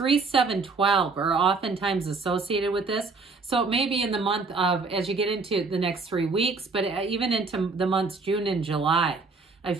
7, 12 are oftentimes associated with this. So it may be in the month of, as you get into the next 3 weeks, but even into the months June and July, I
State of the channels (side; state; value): left; quieter; 4.1 dB